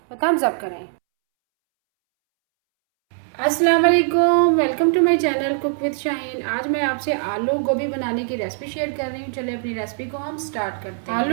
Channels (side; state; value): left; silent; 65 dB below the other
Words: तो थम्स अप करें। अस्सलाम वालेकुम, welcome to my channel cook with Shaheen. आज मैं आपसे आलू गोभी बनाने की रेसिपी शेयर कर रही हूँ। चलिए अपनी रेसिपी को हम स्टार्ट करते हैं।